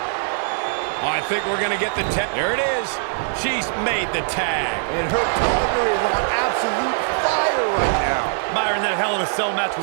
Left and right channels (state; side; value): silent; left; digital silence